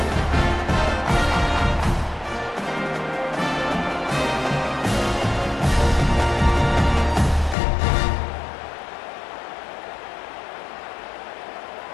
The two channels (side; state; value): right; drops out; at 7.6 s